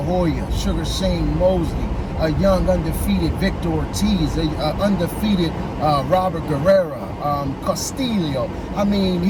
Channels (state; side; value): identical; both; correlation 1.00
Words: Hoya, Sugar Shane Mosley, a young undefeated Victor Ortiz, a undefeated Robert Guerrero, Castillo. I mean,